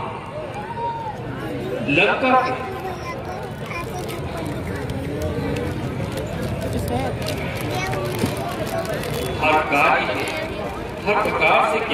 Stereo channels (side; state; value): both; identical; correlation 1.00